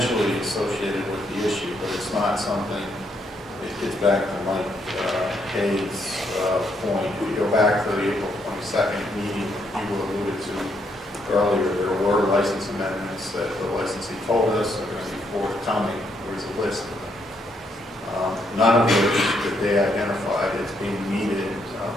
associated with the issue, but it's not something, it gets back to Mike Hayes' point. If you go back to the April 22nd meeting you alluded to earlier, there were license amendments that the licensee told us are going to be forthcoming. There was a list of them. None of which that they identified as being needed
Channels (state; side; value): normal; both; correlation 0.75